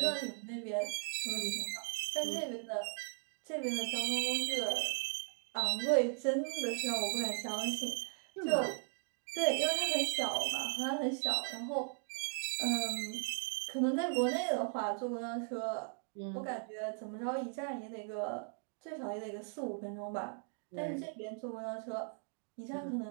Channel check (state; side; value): silent; left; 53 dB below the other